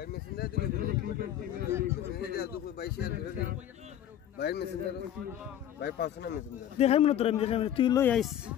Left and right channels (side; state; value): right; quieter; 11.0 dB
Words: দেখাই মনে তোর তুই লই আইস